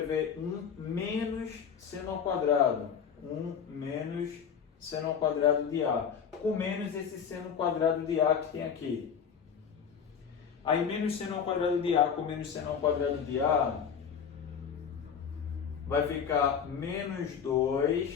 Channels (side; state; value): right; quieter; 7.3 dB